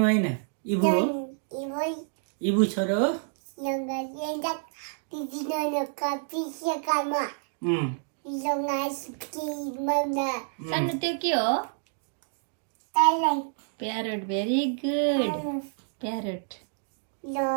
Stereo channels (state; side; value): silent; left; digital silence